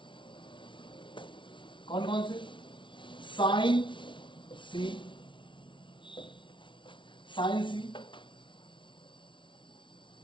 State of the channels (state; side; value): late; right; 0.24 ms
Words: कौन कौन से, साइन सी,